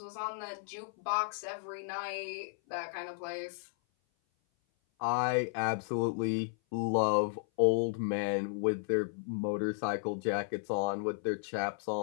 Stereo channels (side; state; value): right; silent; 55 dB below the other